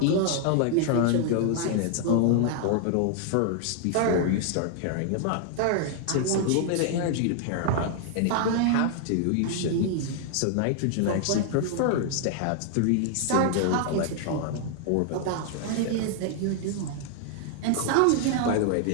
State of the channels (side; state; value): both; different; correlation 0.00